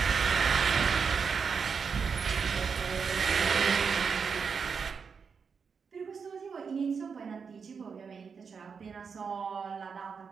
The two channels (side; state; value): left; quieter; 5.9 dB